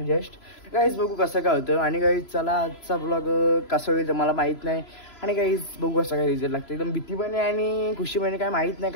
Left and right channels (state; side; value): late; right; 3.0 ms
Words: जस्ट. गाईज बघू कसं काय होतं. आणि गाईज चला आजचा ब्लॉग कसा होईल मला माहीत नाही. आणि गाईज बघू कसं काय रिझल्ट लागतं. एकदम भीती पण आहे आणि खुशी पण आहे, काय माहीत नाही